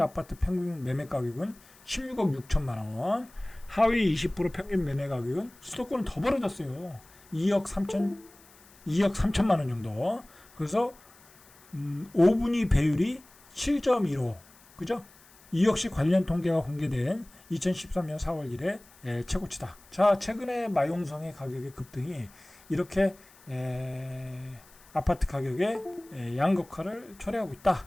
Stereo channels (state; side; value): noise; left; hiss, 26 dB below the sound